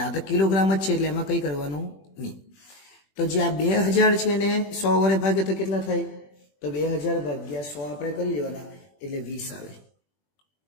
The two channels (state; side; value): late; right; 21 ms